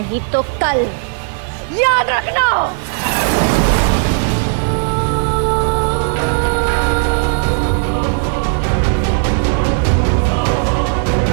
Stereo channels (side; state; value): left; silent; digital silence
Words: तो कल, याद रखना।